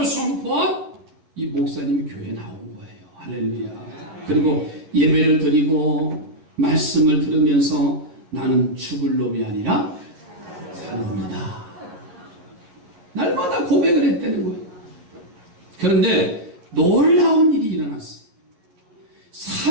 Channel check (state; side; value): late; left; 11 ms